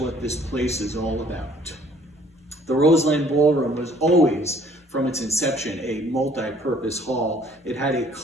this place is all about." The Roseland Ballroom was always, from its inception, a multi-purpose hall. It had a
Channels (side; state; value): both; normal; correlation 0.58